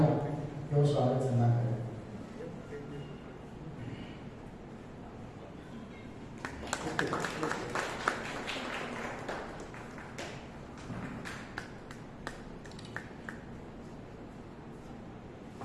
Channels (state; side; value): identical; both; correlation 1.00